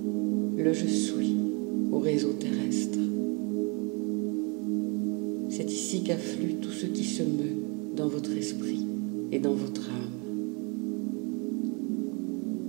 le je suis au réseau terrestre. C'est ici qu'afflue tout ce qui se meut dans votre esprit et dans votre âme.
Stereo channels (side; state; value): left; quieter; 32.3 dB